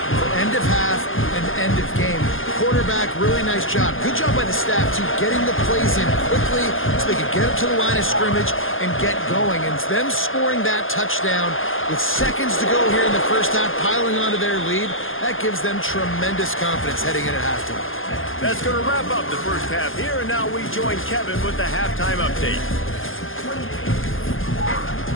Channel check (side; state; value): right; late; 0.59 ms